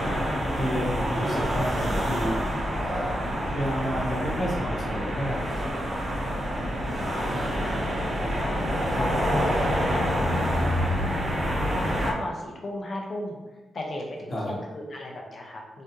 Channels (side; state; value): both; normal; correlation 0.84